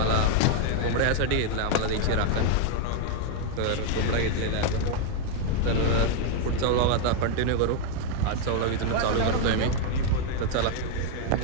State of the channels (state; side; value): different; both; correlation 0.00